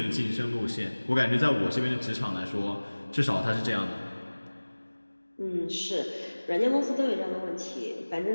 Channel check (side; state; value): both; inverted; correlation -1.00